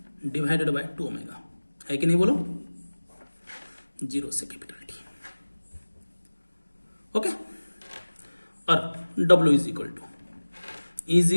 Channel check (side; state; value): both; inverted; correlation -1.00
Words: divided by 2 omega, है कि नहीं बोलो, 0 से कैपिटल T। ओके, और W is equal to